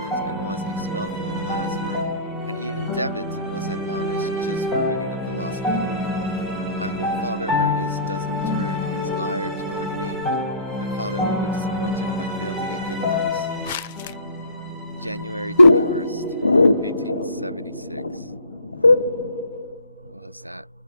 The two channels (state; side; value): inverted; both; correlation -0.48